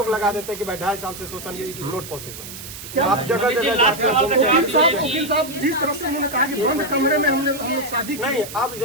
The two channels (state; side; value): noise; right; hiss, 12 dB below the sound